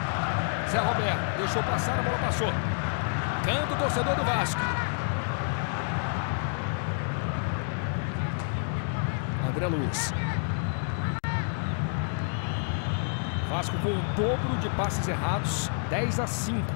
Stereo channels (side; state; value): right; silent; digital silence